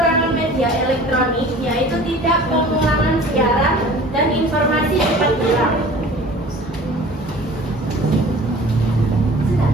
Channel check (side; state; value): both; normal; correlation 0.45